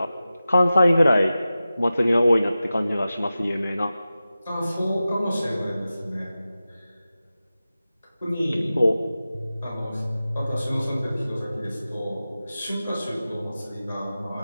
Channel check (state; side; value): inverted; both; correlation -0.94